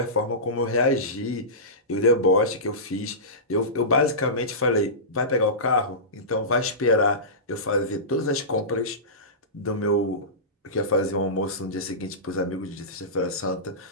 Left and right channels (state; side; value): normal; both; correlation -0.20